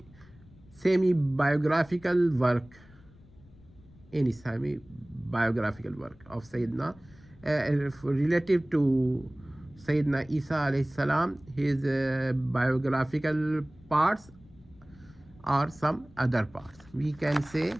semi-biographical work, of Sayyidina relative to Sayyidina Isa alayhi salam, his biographical parts or some other parts. We can say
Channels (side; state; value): left; noise; rumble, 25 dB below the sound